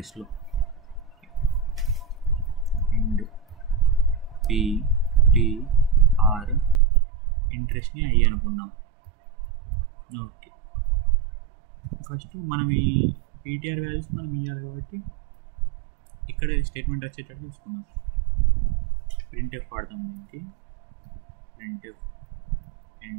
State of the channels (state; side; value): drops out; left; at 6.8 s